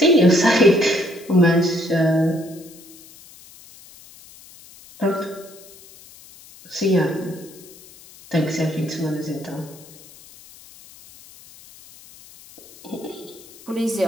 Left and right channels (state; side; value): noise; left; hiss, 22 dB below the sound